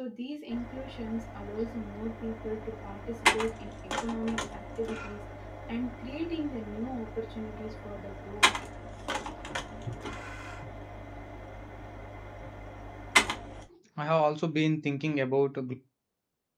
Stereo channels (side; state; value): both; identical; correlation 1.00